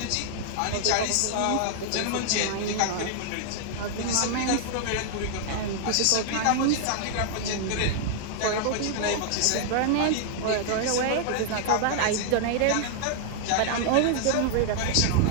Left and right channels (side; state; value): both; different; correlation -0.01